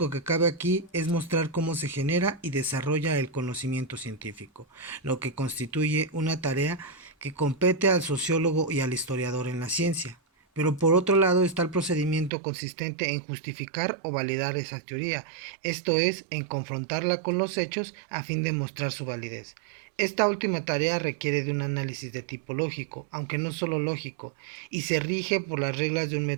que cabe aquí es mostrar cómo se genera y desarrolla el conocimiento científico, lo que constituye una tarea que compete al sociólogo y al historiador en la ciencia. Pero por otro lado está el procedimiento consistente en justificar o validar esa teoría, esto es, en confrontarla con los hechos a fin de mostrar su validez. Esta última tarea requiere de un análisis de tipo lógico, aunque no solo lógico, y se rige por las reglas de un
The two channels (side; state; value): left; drops out; at 12.3 s